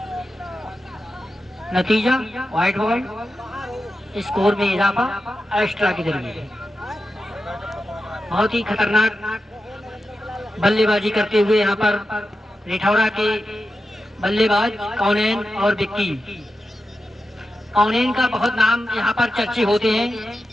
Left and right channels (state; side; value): normal; both; correlation 0.90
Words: नतीजा व्हाइट बॉल, स्कोर में इजाफा एक्स्ट्रा के जरिए। बहुत ही खतरनाक बल्लेबाजी करते हुए यहाँ पर रिठौरा के बल्लेबाज कॉनेन और विक्की। कॉनेन का बहुत नाम यहाँ पर चर्चे होते हैं,